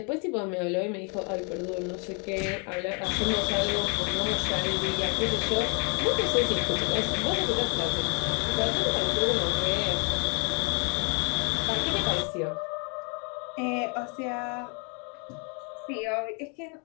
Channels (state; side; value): quieter; right; 36.0 dB